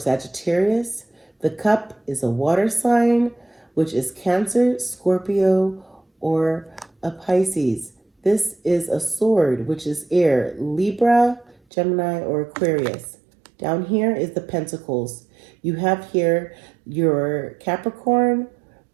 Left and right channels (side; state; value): left; drops out; at 11.6 s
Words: The cup is a water sign, which is Cancer, Scorpio, or a Pisces. This is a sword, which is air, Libra, Gemini, or Aquarius. Down here is the Pentacles. You have here your Capricorn,